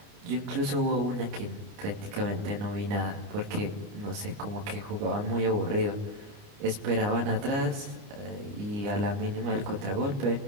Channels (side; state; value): left; late; 29 ms